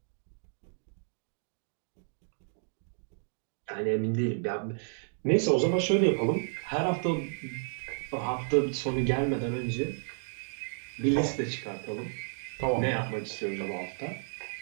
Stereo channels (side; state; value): left; silent; digital silence